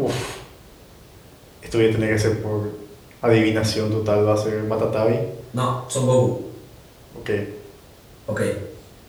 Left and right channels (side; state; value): both; identical; correlation 1.00